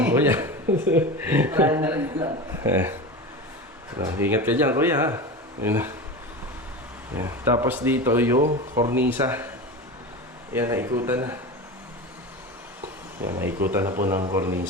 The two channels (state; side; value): normal; both; correlation 0.27